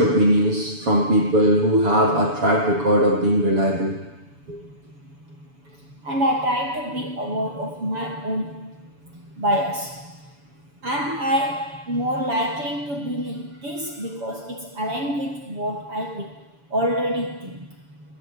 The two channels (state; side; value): late; left; 7.0 ms